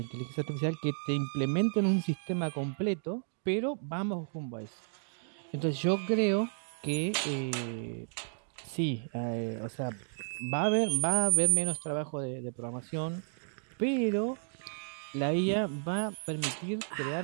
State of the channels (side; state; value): left; silent; digital silence